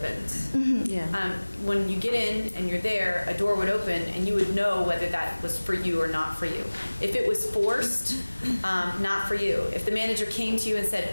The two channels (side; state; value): both; inverted; correlation -1.00